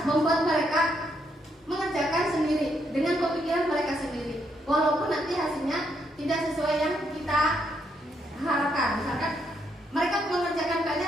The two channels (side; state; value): both; normal; correlation 0.76